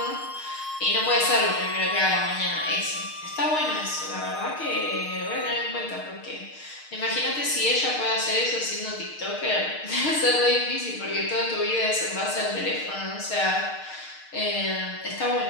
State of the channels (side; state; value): right; late; 6.5 ms